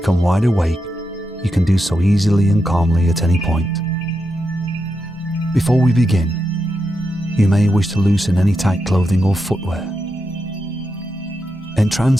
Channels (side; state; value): both; normal; correlation 0.86